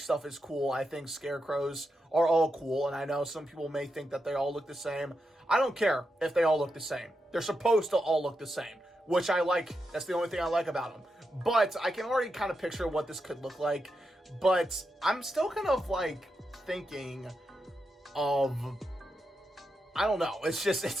is cool. I think Scarecrows are all cool, and I know some people may think that they all look the same. I don't care if they all look the same. They're supposed to all look the same, which I like. That's the only thing I like about them. But I can already kind of picture what this could look like. But I'm still kind of like thinking of, I don't know.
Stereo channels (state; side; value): normal; both; correlation 0.86